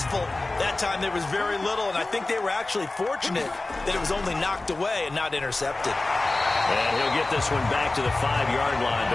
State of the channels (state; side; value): quieter; right; 3.1 dB